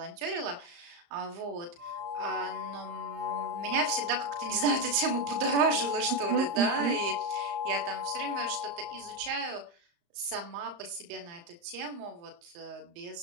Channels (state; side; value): late; left; 35 ms